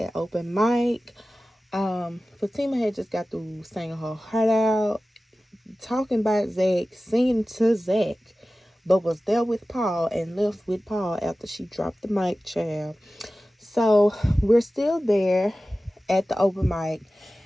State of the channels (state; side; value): normal; both; correlation 0.96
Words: open mic. Fatima had just got through singing her heart out, talking about Zach, singing to Zach, but was there with Paul and left with Paul after she dropped the mic, child. So we're still there at the open mic,